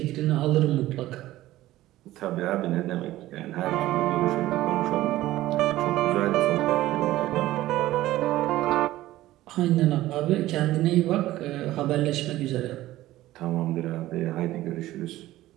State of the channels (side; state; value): left; quieter; 15.7 dB